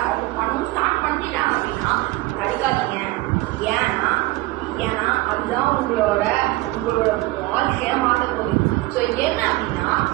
அவங்க பண்ணணும் ஸ்டார்ட் பண்ணிட்டாங்க அப்படின்னா படிக்காதீங்க. ஏன்னா அதுதான் உங்களோட வாழ்க்கையை மாற்ற போகுது. ஸோ என்ன அப்படின்னா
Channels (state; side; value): quieter; left; 19.4 dB